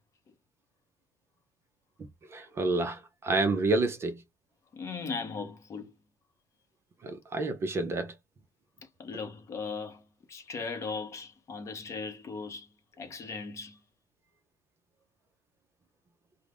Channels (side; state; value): both; normal; correlation 0.54